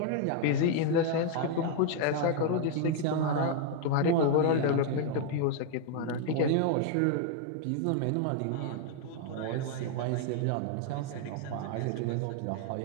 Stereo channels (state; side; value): different; both; correlation 0.00